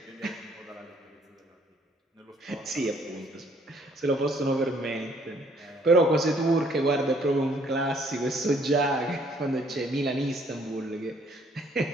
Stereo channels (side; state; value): both; normal; correlation 0.63